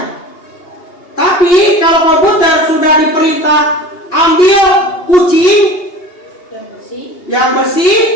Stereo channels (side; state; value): right; late; 2.8 ms